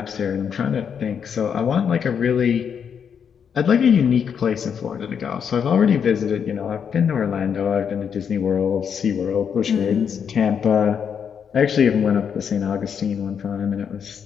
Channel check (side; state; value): right; quieter; 7.4 dB